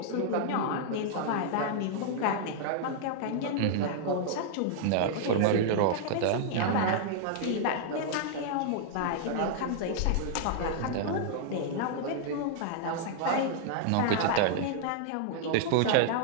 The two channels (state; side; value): different; both; correlation -0.01